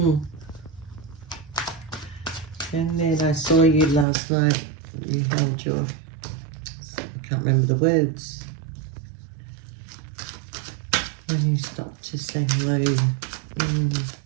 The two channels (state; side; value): drops out; left; at 4.0 s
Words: then I saw you last night. You held your, I can't remember the words. When you stopped to say hello.